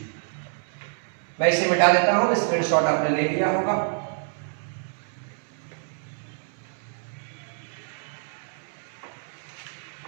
मैं इसे मिटा देता हूं, स्क्रीनशॉट आपने ले लिया होगा।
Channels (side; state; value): left; silent; 60 dB below the other